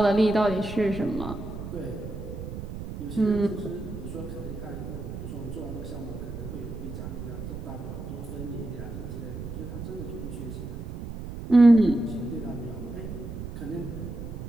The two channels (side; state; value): right; noise; rumble, 8 dB below the sound